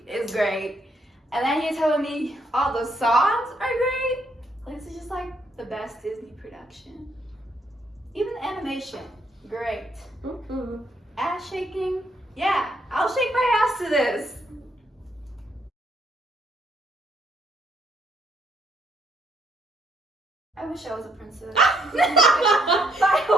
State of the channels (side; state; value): both; normal; correlation 0.72